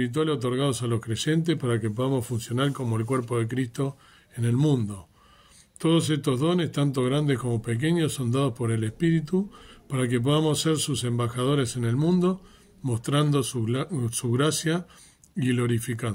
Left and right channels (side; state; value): both; identical; correlation 1.00